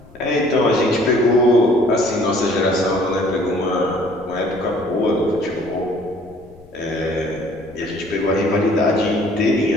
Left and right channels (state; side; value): noise; left; rumble, 25 dB below the sound